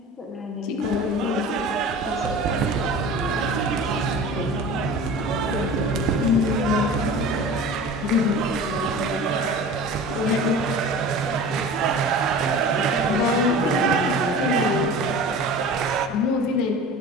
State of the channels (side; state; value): both; normal; correlation 0.37